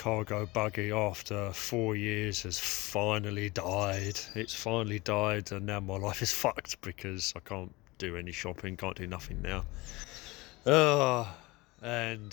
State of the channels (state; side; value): quieter; right; 22.4 dB